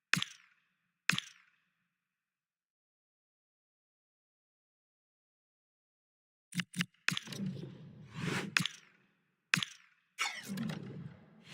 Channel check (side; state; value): both; identical; correlation 1.00